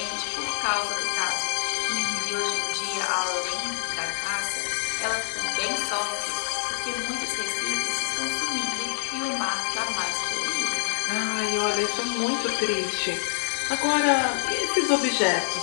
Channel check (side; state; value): right; silent; digital silence